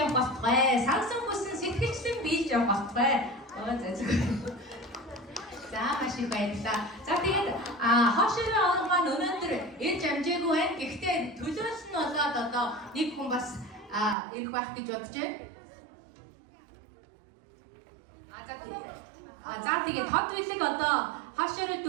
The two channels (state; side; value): drops out; left; at 14.2 s